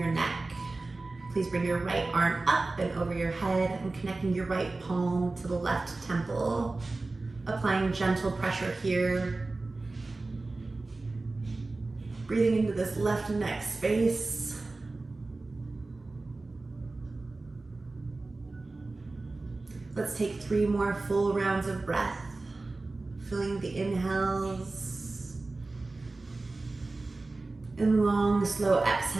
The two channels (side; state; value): left; quieter; 3.3 dB